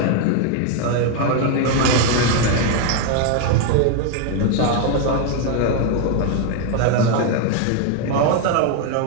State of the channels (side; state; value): both; different; correlation 0.01